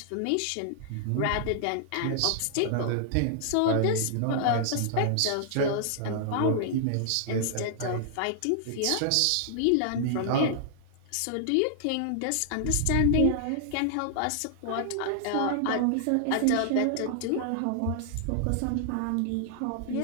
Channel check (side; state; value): both; different; correlation -0.01